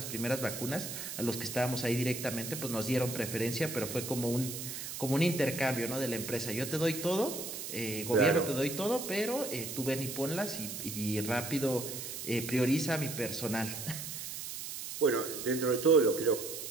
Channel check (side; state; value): right; noise; hiss, 7 dB below the sound